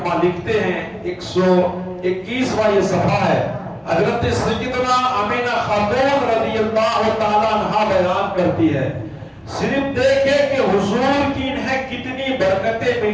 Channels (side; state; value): both; identical; correlation 1.00